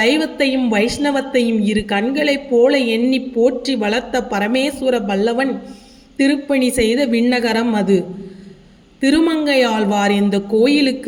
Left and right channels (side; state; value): both; identical; correlation 1.00